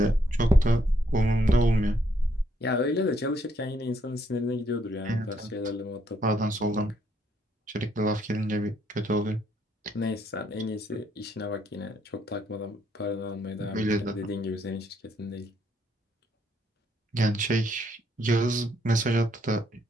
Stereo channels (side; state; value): both; normal; correlation 0.72